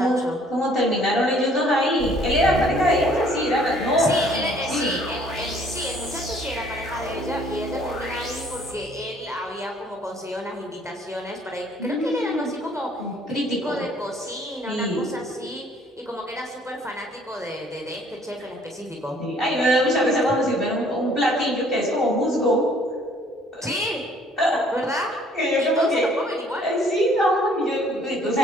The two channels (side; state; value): both; normal; correlation 0.59